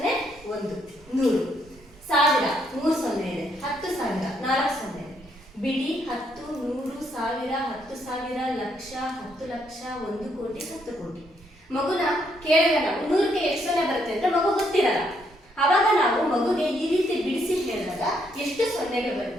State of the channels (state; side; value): normal; both; correlation 0.73